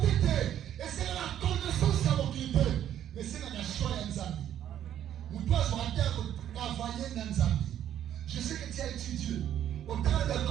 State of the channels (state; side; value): quieter; left; 10.8 dB